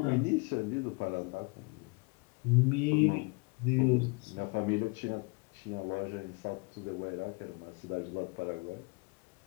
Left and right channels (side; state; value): right; quieter; 30.7 dB